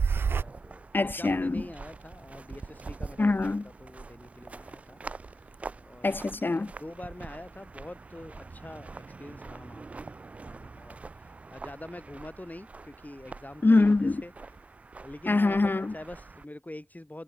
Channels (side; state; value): both; normal; correlation 0.92